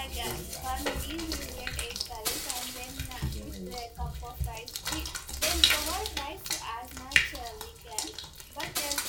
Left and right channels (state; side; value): identical; both; correlation 1.00